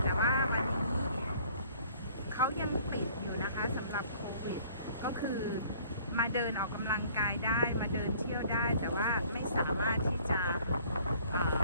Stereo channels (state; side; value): inverted; both; correlation -0.55